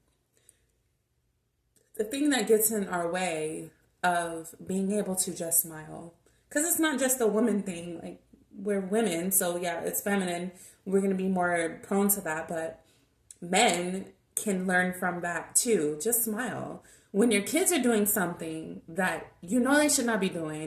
the thing that gets in our way of being able to just smile, because it's not just a woman thing. Like, we're women, so yeah, it's feminine. We're gonna be more prone to that, but men can learn from that too. Just smile. When your kids are doing something that you know they should not be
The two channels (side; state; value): both; identical; correlation 1.00